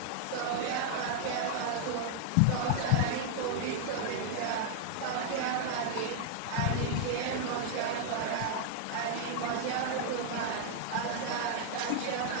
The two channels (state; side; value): different; both; correlation 0.00